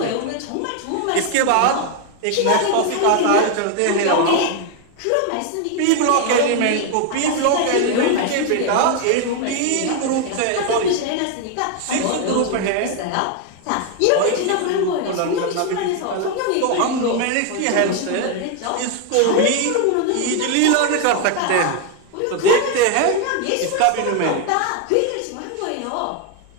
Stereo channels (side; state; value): both; different; correlation 0.01